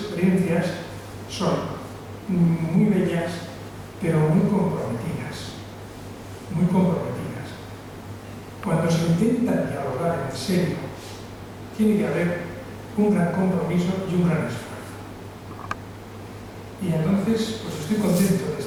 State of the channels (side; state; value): both; identical; correlation 1.00